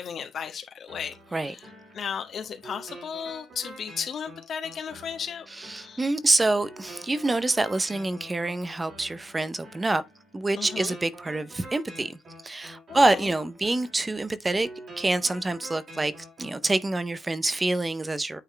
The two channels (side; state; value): both; normal; correlation 0.94